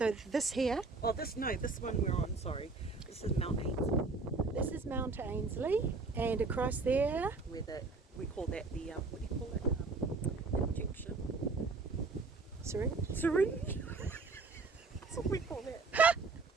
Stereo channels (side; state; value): left; quieter; 3.9 dB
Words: this here, Oh, this one we're on, sorry. This is Mount Ainslie. this is Mount Ainslie, and across there, Where we call that the, what do you call it? Injection. Syringe? That's what we call that.